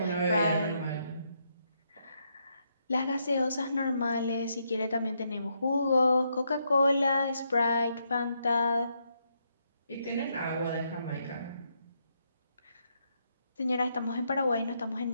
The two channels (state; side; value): inverted; both; correlation -0.78